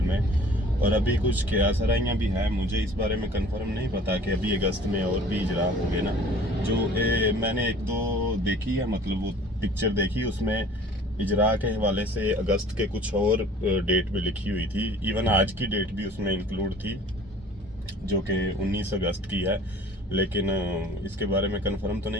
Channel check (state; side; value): normal; both; correlation 0.49